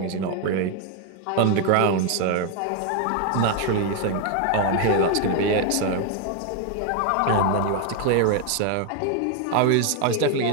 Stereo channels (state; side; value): different; both; correlation 0.01